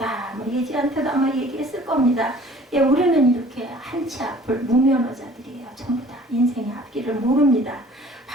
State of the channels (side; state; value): both; normal; correlation 0.51